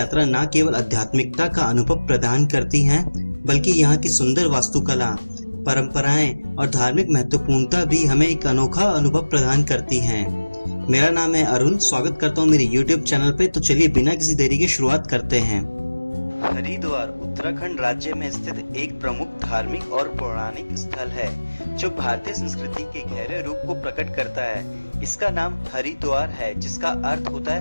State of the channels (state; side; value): inverted; both; correlation -1.00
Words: न केवल आध्यात्मिकता का अनुभव प्रदान करती हैं, बल्कि यहाँ की सुंदर वास्तुकला, परंपराएं और धार्मिक महत्वपूर्णता भी हमें एक अनोखा अनुभव प्रदान करती हैं। मेरा नाम है अरुण, स्वागत करता हूँ मेरे YouTube चैनल पे। तो चलिए बिना किसी देरी के शुरुआत करते हैं। हरिद्वार उत्तराखंड राज्य में स्थित एक प्रमुख धार्मिक और पौराणिक स्थल है जो भारतीय संस्कृति के गहरे रूप को प्रकट करता है। इसका नाम हरिद्वार है, जिसका अर्थ होता